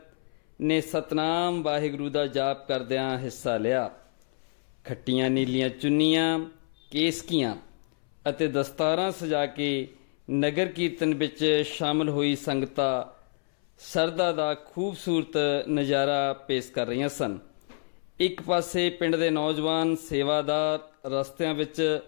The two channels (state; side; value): silent; right; 59 dB below the other